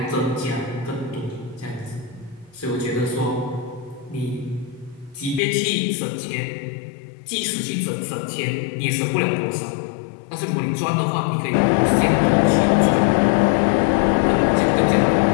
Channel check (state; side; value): drops out; right; at 5.4 s